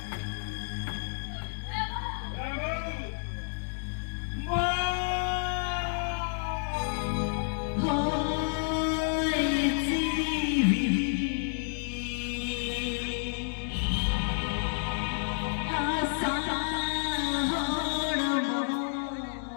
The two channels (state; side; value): silent; right; digital silence